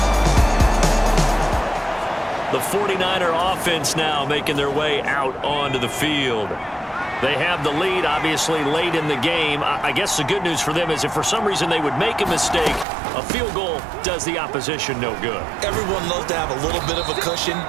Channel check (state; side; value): drops out; left; at 12.9 s